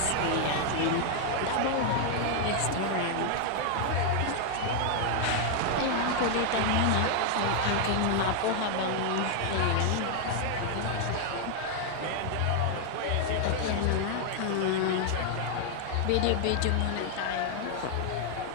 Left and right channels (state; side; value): different; both; correlation 0.00